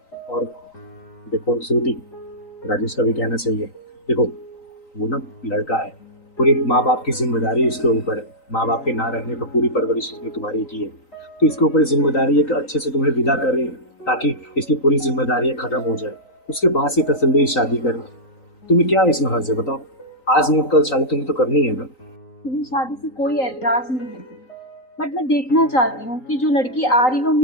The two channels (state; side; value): late; right; 3.9 ms